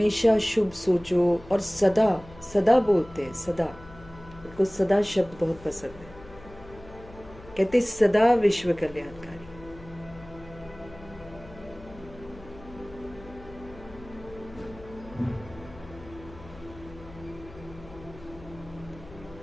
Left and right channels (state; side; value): noise; left; hum, 19 dB below the sound